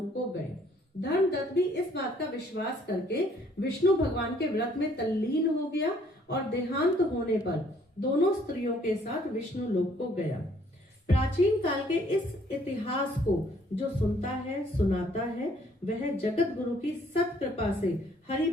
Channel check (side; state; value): both; normal; correlation 0.62